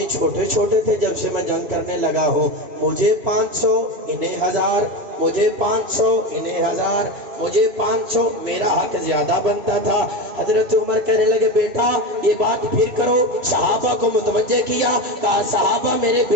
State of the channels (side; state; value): left; late; 3.0 ms